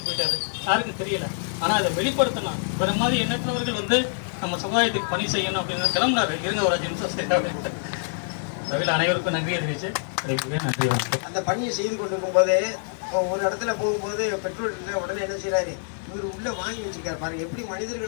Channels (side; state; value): right; silent; digital silence